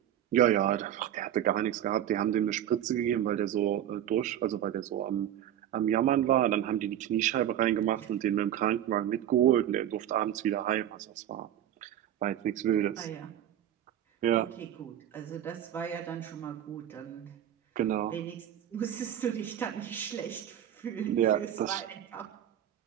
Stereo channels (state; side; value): quieter; left; 11.1 dB